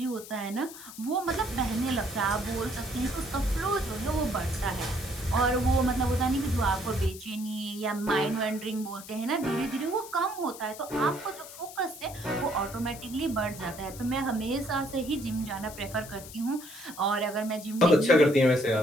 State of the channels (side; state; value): left; noise; hiss, 15 dB below the sound